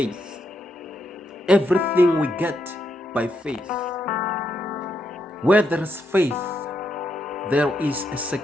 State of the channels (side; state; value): both; normal; correlation 0.80